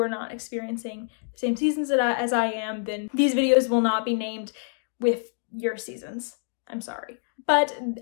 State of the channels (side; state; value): right; silent; digital silence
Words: not experiencing the same seasons as I am, then these videos will not be named with your seasons. I'm sorry. But